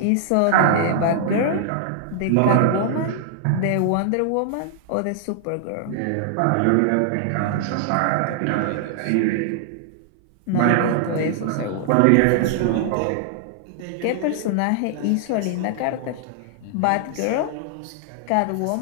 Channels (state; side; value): different; both; correlation -0.01